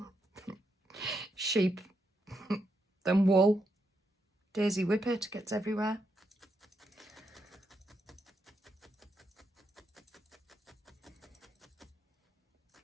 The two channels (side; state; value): both; normal; correlation 0.81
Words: sheep than wool. Daisy Whippet gets everywhere.